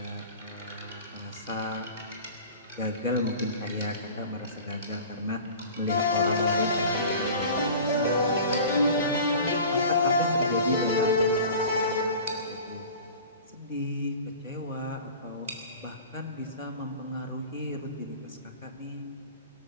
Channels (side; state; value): both; inverted; correlation -0.40